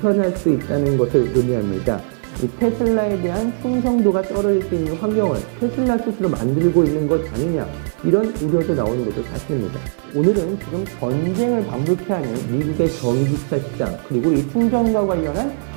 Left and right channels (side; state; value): left; silent; digital silence